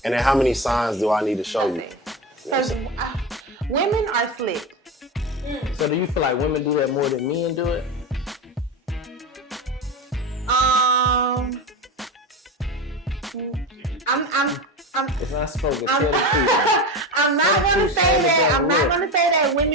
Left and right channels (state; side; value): normal; both; correlation 0.22